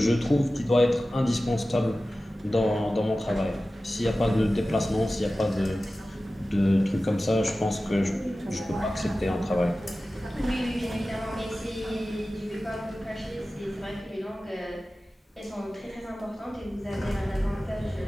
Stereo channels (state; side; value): normal; both; correlation 0.95